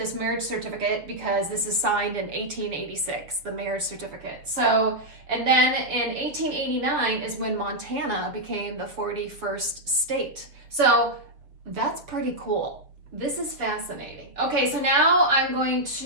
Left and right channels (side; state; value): left; late; 6.9 ms